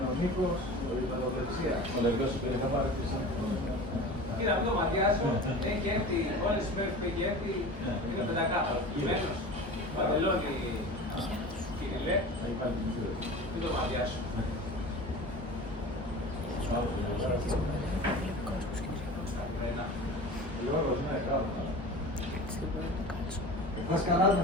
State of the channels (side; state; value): both; normal; correlation 0.35